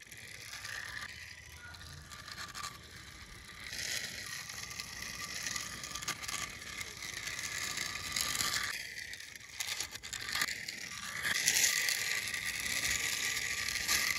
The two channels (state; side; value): identical; both; correlation 1.00